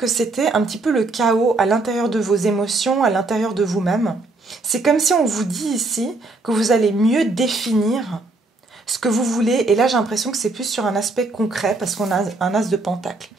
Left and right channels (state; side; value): quieter; left; 3.2 dB